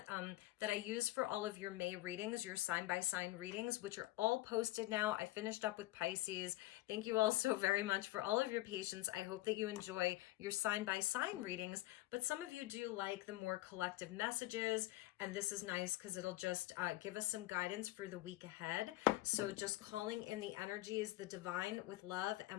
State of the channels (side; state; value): right; quieter; 17.6 dB